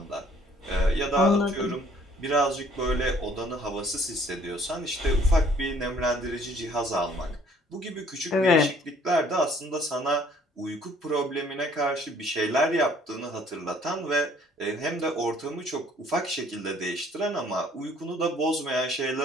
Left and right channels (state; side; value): normal; both; correlation 0.59